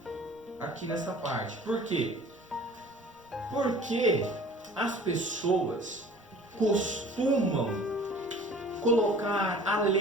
aqui nessa parte. Por quê? Porque as pessoas costumam colocar a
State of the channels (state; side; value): normal; both; correlation 0.47